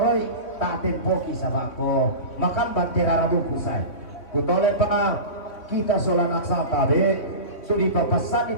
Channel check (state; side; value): late; right; 3.6 ms